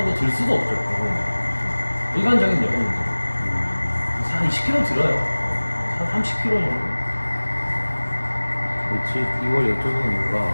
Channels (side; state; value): both; inverted; correlation -1.00